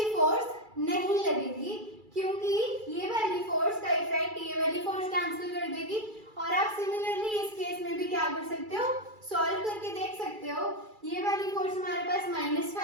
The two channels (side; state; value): left; late; 2.3 ms